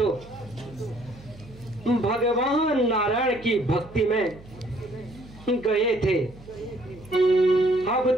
भगवान नारायण की भक्ति में गए थे, अब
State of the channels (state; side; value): noise; right; hum, 21 dB below the sound